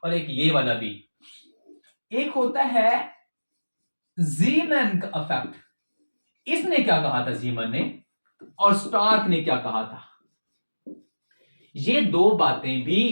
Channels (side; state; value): both; inverted; correlation -1.00